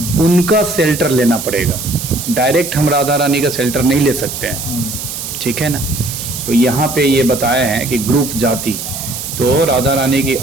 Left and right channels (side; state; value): right; noise; hiss, 7 dB below the sound